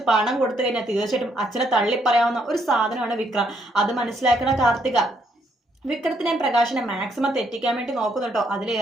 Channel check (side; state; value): both; normal; correlation 0.72